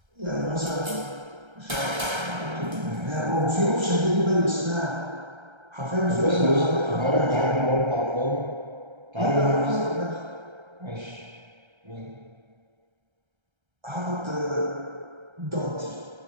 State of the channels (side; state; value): left; late; 1.3 ms